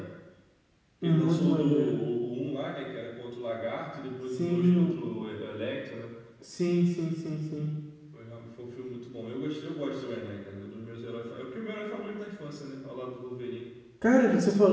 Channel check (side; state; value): both; identical; correlation 1.00